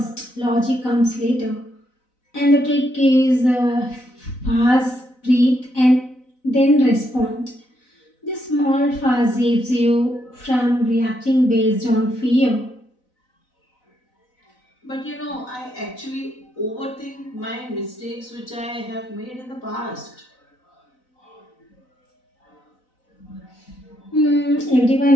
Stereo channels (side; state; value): right; late; 4.0 ms